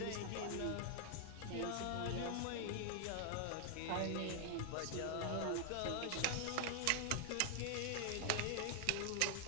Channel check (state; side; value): different; both; correlation 0.00